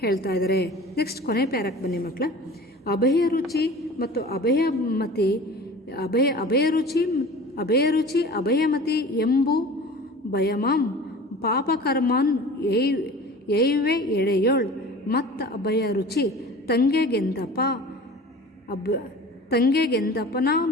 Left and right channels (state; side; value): normal; both; correlation 0.40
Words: ಹೇಳ್ತಾ ಇದ್ದಾರೆ. ನೆಕ್ಸ್ಟ್ ಕೊನೆ ಪ್ಯಾರಕ್ಕೆ ಬನ್ನಿ ಮಕ್ಕಳ. ಅಭಯರುಚಿ ಮತ್ತು ಅಭಯಮತಿ ಅಭಯರುಚಿ ಅಭಯಮತಿ ಎಂಬು ಭಯಮಾಂ ಪಾಪಕರ್ಮನ್ ಏಯುವೆ ಎಳೆಯೋಳ್ ಮತ್ತ ಅಭಯರುಚಿ ತಂಗೆಗೆಂದಪನ